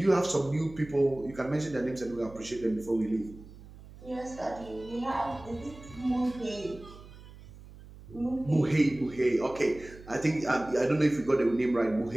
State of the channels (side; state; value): right; noise; hum, 18 dB below the sound